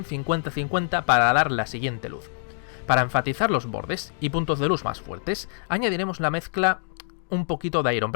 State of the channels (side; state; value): right; silent; 62 dB below the other